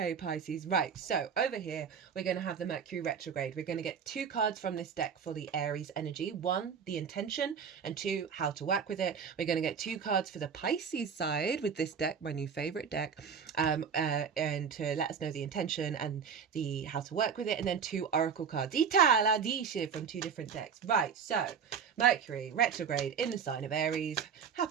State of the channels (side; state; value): left; quieter; 6.8 dB